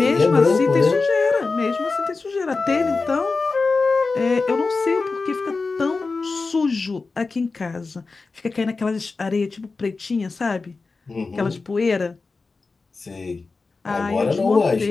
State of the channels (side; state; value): right; quieter; 4.0 dB